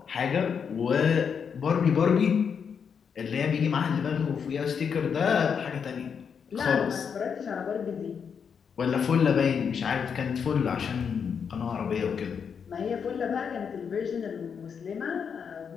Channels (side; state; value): right; quieter; 6.8 dB